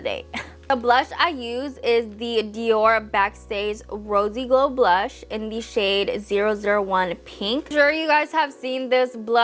day. The blush I use is the Dior Backstage Rosy Glow Blush in the shade 001 Pink. I'm sure you guys have seen this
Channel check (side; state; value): both; identical; correlation 1.00